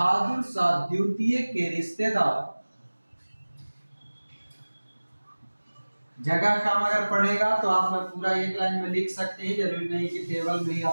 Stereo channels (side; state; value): both; inverted; correlation -1.00